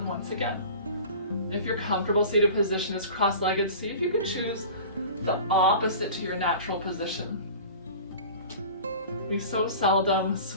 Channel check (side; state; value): both; inverted; correlation -0.39